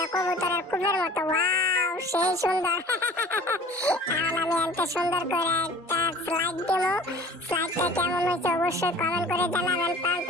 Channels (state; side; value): normal; both; correlation 0.46